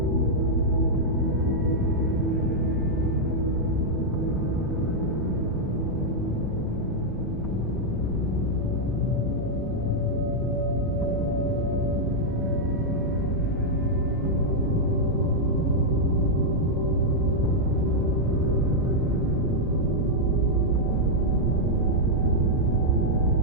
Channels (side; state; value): both; normal; correlation -0.04